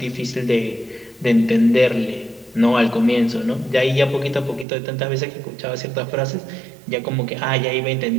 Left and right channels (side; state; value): left; drops out; at 4.7 s